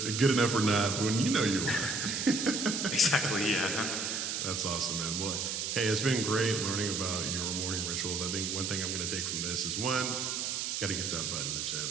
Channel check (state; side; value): noise; right; hiss, 1 dB below the sound